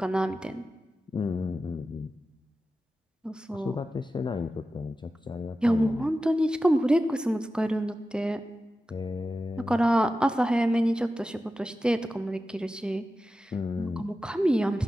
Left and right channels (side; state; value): both; normal; correlation 0.93